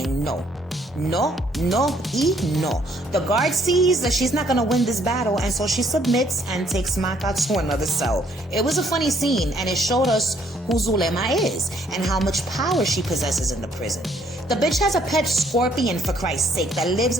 no. No, no, y no. The guard sees that she's not gonna win this battle, and so she submits and takes Maka to another cell. It was a funny scene, and it showed us who Zulema is and how much power she possesses in the prison. The bitch has a pet scorpion, for Christ's sake, that lives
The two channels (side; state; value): both; normal; correlation 0.65